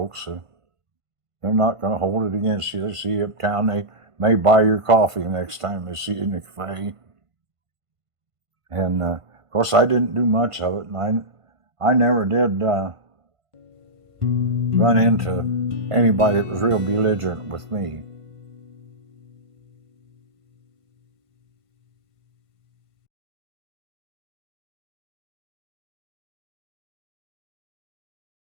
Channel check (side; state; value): left; late; 1.5 ms